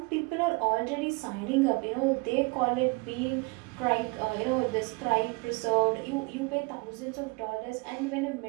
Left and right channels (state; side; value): quieter; left; 28.3 dB